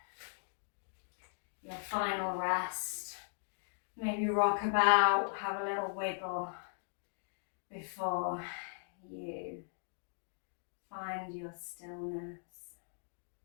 Your final rest. Maybe rock about, have a little wiggle before you find your stillness.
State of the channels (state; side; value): silent; right; digital silence